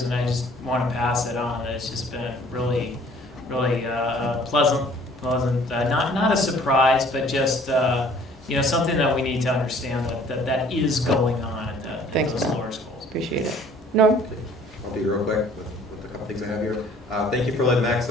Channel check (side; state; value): both; normal; correlation 0.55